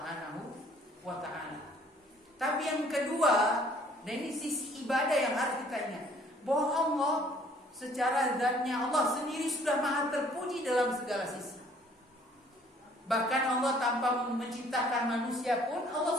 wa ta'ala. Tapi yang kedua, dan ini sisi ibadah yang harus kita ingat, bahwa Allah secara zatnya Allah sendiri sudah maha terpuji dalam segala sisi. Bahkan Allah tanpa menciptakan manusia pun Allah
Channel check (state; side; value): normal; both; correlation 0.58